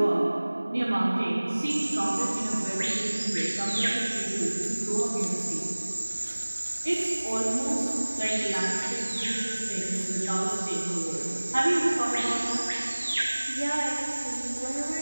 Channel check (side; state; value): both; inverted; correlation -1.00